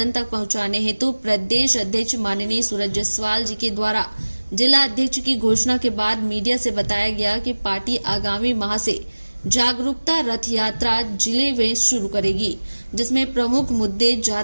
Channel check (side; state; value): both; inverted; correlation -1.00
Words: तक पहुंचाने हेतु प्रदेश अध्यक्ष माननीय सूरज जायसवाल जी के द्वारा जिला अध्यक्ष की घोषणा के बाद मीडिया से बताया गया कि पार्टी आगामी माह से जागरूकता रथ यात्रा जिले में शुरू करेगी, जिसमें प्रमुख मुद्दे